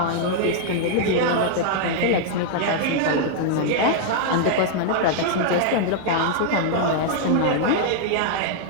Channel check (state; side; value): different; both; correlation 0.00